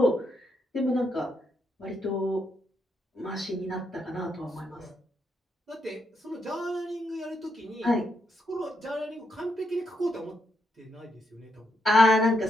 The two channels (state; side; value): normal; both; correlation 0.80